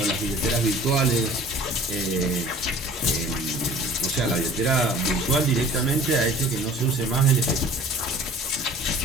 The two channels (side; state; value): both; normal; correlation 0.47